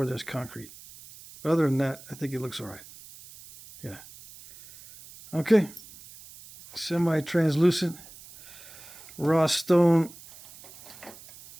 there's concrete. Other than that, I think it looks all right. Yeah. Okay. Semi-translucent raw stone.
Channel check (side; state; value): right; noise; hiss, 19 dB below the sound